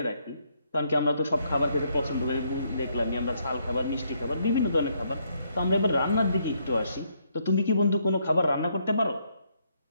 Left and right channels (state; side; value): inverted; both; correlation -0.73